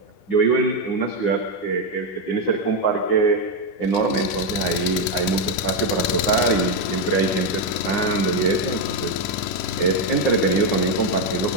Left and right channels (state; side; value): late; right; 11 ms